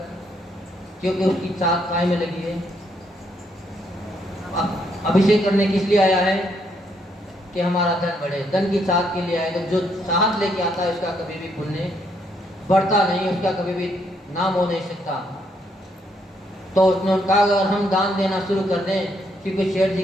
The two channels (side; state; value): both; normal; correlation 0.73